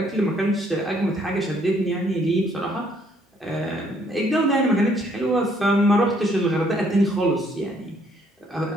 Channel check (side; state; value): both; normal; correlation 0.66